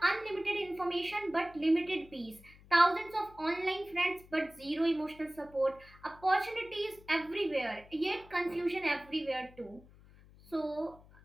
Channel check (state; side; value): noise; left; hum, 23 dB below the sound